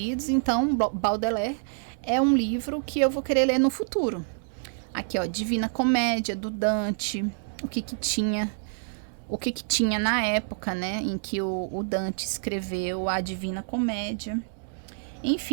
Então, Baudelaire é um livro que eu vou querer ler no futuro. Aqui, ó, Divina Comédia, do Dante, o que tinha na época, né, em que o Dante escreveu a Divina Comédia.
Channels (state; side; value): silent; left; digital silence